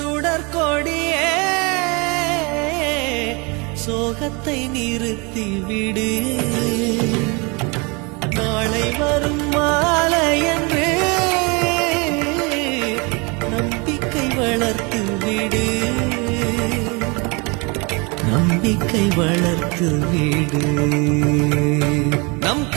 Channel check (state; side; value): quieter; left; 29.4 dB